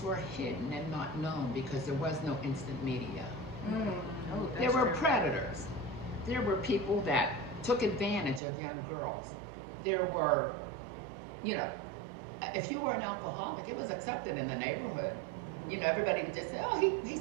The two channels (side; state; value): left; drops out; at 8.4 s